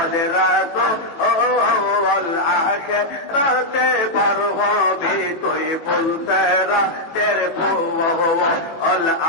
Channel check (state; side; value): late; right; 18 ms